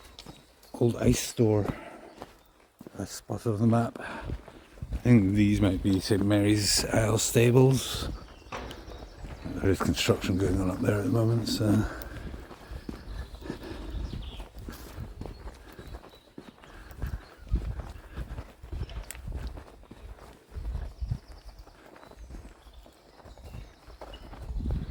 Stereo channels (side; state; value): both; identical; correlation 1.00